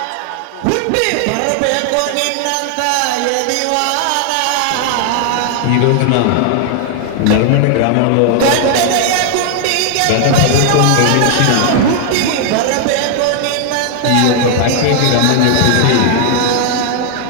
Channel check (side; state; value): both; different; correlation 0.00